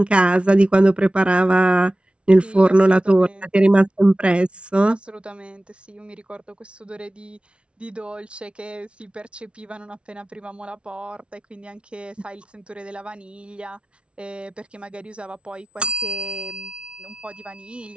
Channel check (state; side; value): late; left; 0.059 ms